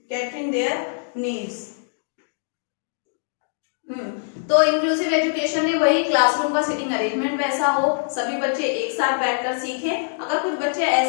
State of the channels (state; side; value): silent; right; digital silence